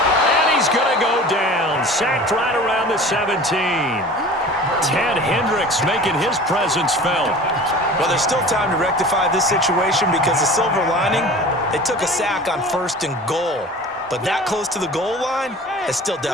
And he's going to go down. Sacked right around the 17. Ted Hendricks making his presence felt. Well, there's still time to rectify this situation because the silver lining, they took a sack on 1st and goal. But that close to the goal line, it still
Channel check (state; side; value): normal; both; correlation 0.40